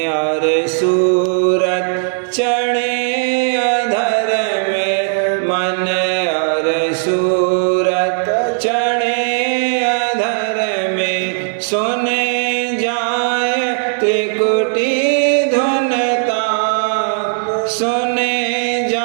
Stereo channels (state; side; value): silent; left; digital silence